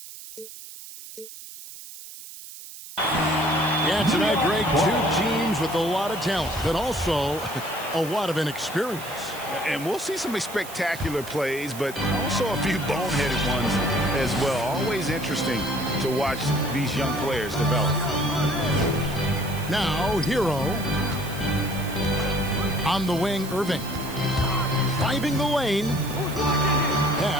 Yeah, tonight, Greg, two teams with a lot of talent, but also a lot of inexperience. And we'll see some spectacular plays, but also a few boneheaded ones as well. Always interesting to watch these young players develop. Now, Hero. On the wing, Irving. Driving the lane.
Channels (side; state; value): right; noise; hiss, 14 dB below the sound